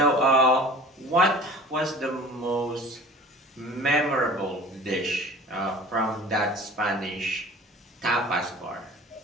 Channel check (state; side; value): normal; both; correlation 0.43